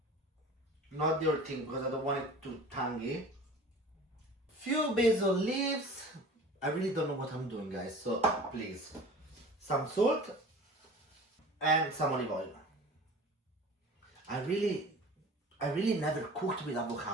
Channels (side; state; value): both; normal; correlation 0.41